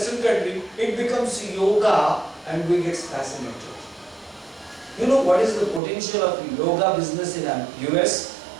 country, it becomes yoga and we get fascinated. You know what is the potential of yoga business in US?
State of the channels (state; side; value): drops out; left; at 5.8 s